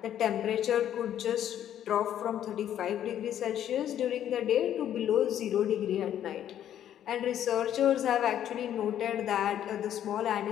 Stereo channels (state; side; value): quieter; right; 10.7 dB